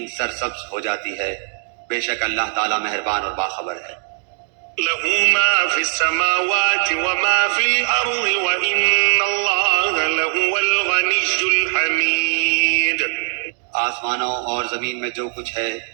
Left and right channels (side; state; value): left; silent; digital silence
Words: سرسبز ہو جاتی ہے؟ بے شک اللہ تعالیٰ مہربان اور باخبر ہے. له ما في السماوات وما في الأرض وإن الله لهو الغني الحميد. آسمانوں اور زمین میں جو کچھ ہے